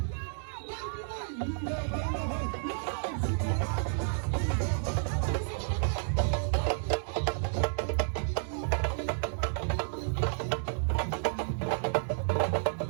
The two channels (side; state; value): left; silent; 57 dB below the other